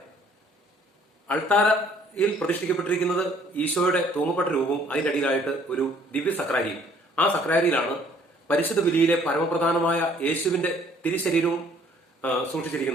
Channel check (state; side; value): normal; both; correlation 0.59